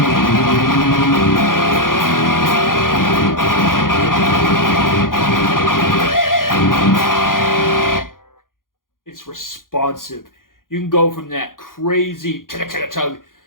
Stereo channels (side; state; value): right; late; 0.90 ms